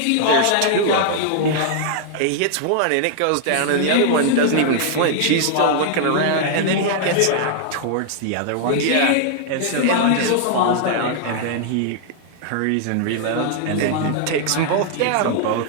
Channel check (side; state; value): both; different; correlation -0.01